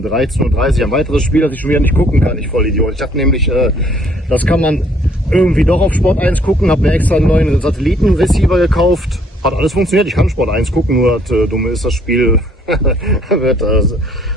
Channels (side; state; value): both; normal; correlation 0.63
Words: 13:30 Uhr ein weiteres Spiel, das ich schon wieder nicht gucken kann. Ich Vollidiot. Ich dachte nämlich, das kann man irgendwie doch auf Sport 1 gucken, habe mir extra einen neuen Satellitenreceiver gekauft. Hat alles funktioniert, ich kann Sport 1 gucken, nur das Dumme ist, das Spiel